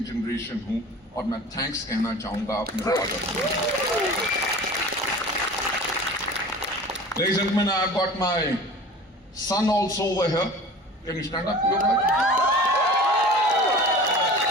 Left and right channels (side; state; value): both; normal; correlation 0.40